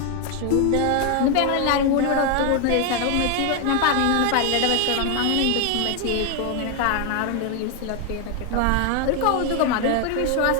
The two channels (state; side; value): different; both; correlation 0.01